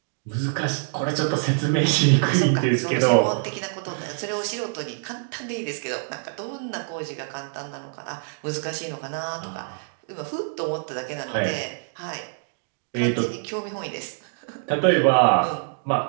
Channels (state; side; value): silent; left; digital silence